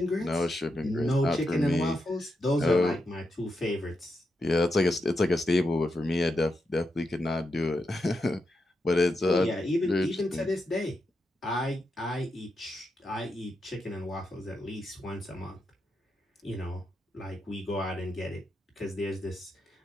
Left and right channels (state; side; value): normal; both; correlation 0.85